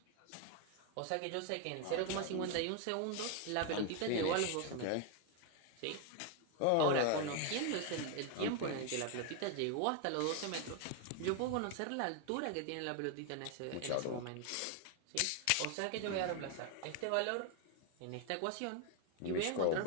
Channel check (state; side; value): different; both; correlation 0.01